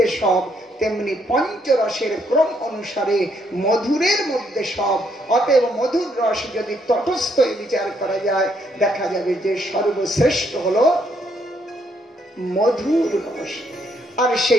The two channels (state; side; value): normal; both; correlation 0.72